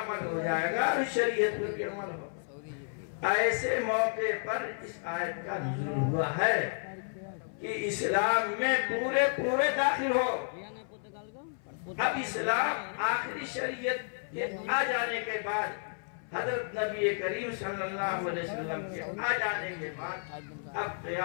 ہو جائے گا اور شریعت پر بھی عمل ہو۔ ایسے موقع پر اس آیت کا نزول ہوا ہے کہ اسلام میں پورے داخل ہو۔ اب اسلام آخری شریعت کے آ جانے کے بعد، حضرت نبی کریم صلی اللہ علیہ وسلم کے آ جانے کے بعد اب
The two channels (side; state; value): right; silent; 57 dB below the other